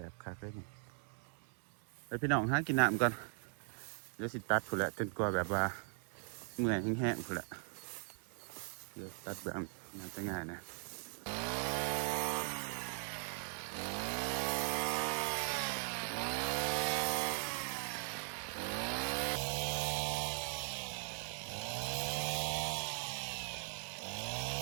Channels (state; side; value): silent; left; 51 dB below the other